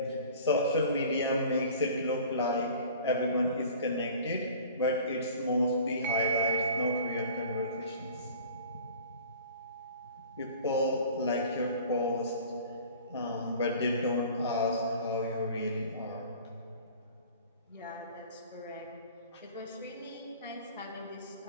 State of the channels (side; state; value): both; inverted; correlation -0.46